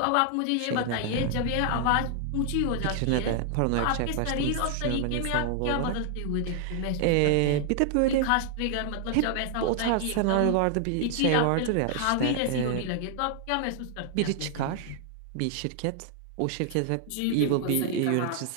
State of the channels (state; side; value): different; both; correlation 0.00